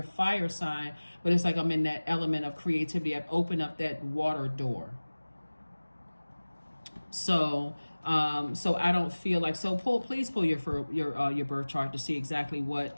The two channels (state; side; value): inverted; both; correlation -1.00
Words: a fire sign, but it's like I'm in that element of creativity. I've opened up that water door. So I don't feel like, please pull your birth chart to see exactly